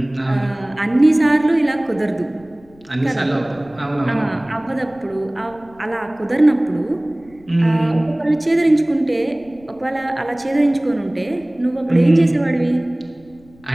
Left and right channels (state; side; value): noise; left; rumble, 27 dB below the sound